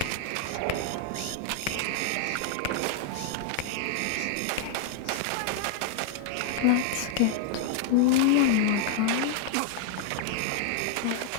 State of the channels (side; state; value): both; different; correlation 0.00